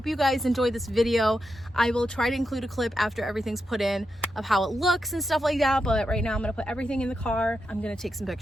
you guys enjoyed this video. I will try to include a clip after everything's put in of how it looks and stuff like that, but right now I'm gonna put everything in the car. I'm gonna take some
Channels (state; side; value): normal; both; correlation 0.86